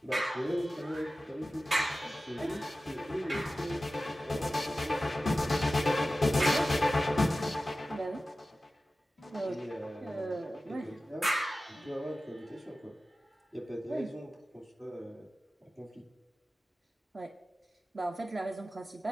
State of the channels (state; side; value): normal; both; correlation 0.95